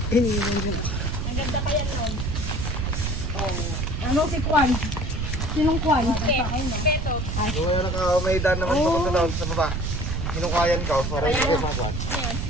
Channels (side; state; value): right; noise; rumble, 2 dB below the sound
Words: Ano si Kwan? Sinong Kwan? Kung may daan naman papunta doon sa baba. Hinukayan ka, para hindi ko makuha.